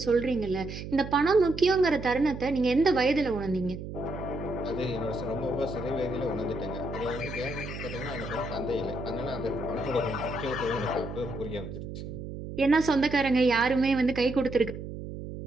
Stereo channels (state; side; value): noise; right; hum, 9 dB below the sound